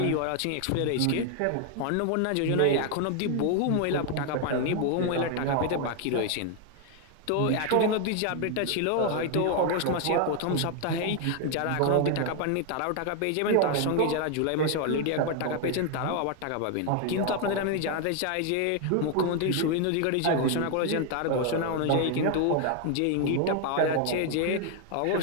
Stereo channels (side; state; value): both; different; correlation 0.01